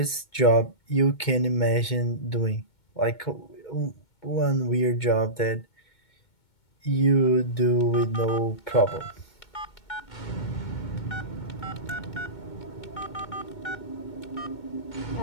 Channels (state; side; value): late; right; 2.2 ms